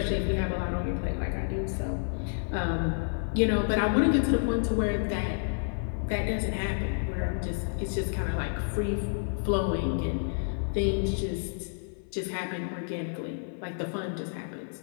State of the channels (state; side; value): silent; right; 58 dB below the other